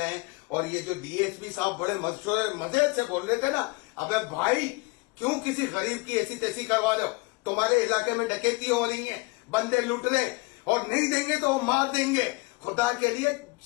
और ये जो DSP साहब बड़े मजे से बोल रहे थे ना, अबे भाई क्यों किसी गरीब की ऐसी तैसी करवा लो? तुम्हारे इलाके में डकैती हो रही है, बंदे लूट रहे और नहीं देंगे तो वो मार देंगे। खुदा के लिए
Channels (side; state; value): right; quieter; 26.5 dB